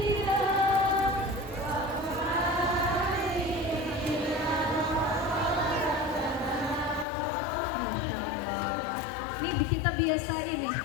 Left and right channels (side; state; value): right; drops out; at 7.1 s